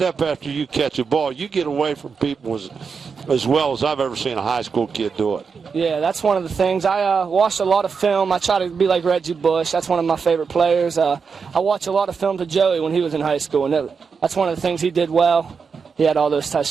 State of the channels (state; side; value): quieter; left; 5.6 dB